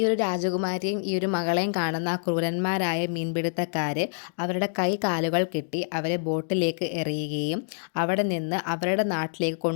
ഒരു രാജകുമാരിയും ഈ ഒരു മകളെയും കാണുന്ന ആ ക്രൂരന്മാരായ മീൻപിടുത്തക്കാർ അവരുടെ കൈ കാലുകൾ കെട്ടി അവരെ ബോട്ടിലേക്ക് എറിയുകയും അവിടെ നിന്ന് അവരുടെ നാട്ടിലേക്ക്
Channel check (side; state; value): right; silent; digital silence